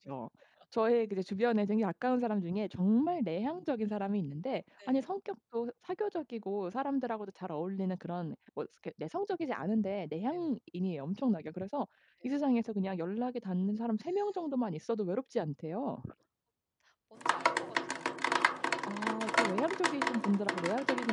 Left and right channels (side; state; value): both; identical; correlation 1.00